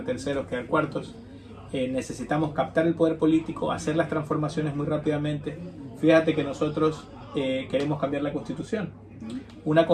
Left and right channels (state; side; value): identical; both; correlation 1.00